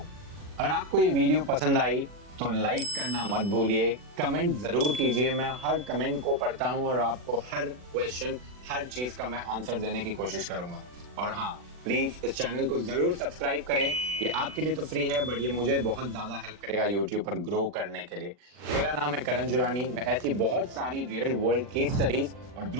अगर आपको ये वीडियो पसंद आई तो लाइक करना मत भूलिए, कमेंट जरूर कीजिए। मैं हर कमेंट को पढ़ता हूँ और आपको हर क्वेश्चन, हर चीज का मैं आंसर देने की कोशिश करूंगा। और हाँ, प्लीज इस चैनल को जरूर सब्सक्राइब करें। ये आपके लिए तो फ्री है, बट ये मुझे बहुत ज्यादा हेल्प करेगा यूट्यूब पर ग्रो करने के लिए। मेरा नाम है करण जुरानी। मैं ऐसी बहुत सारी रियल वर्ल्ड केस स्टडीज और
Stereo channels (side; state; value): left; late; 40 ms